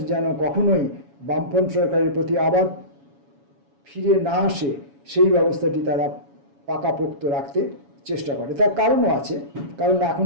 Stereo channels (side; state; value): left; late; 7.1 ms